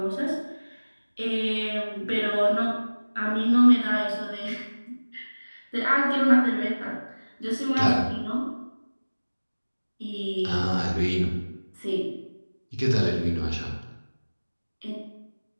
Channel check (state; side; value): inverted; both; correlation -1.00